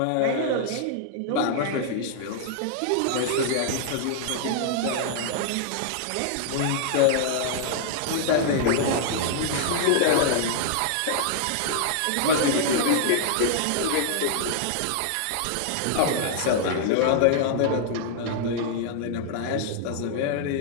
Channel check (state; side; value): different; both; correlation -0.01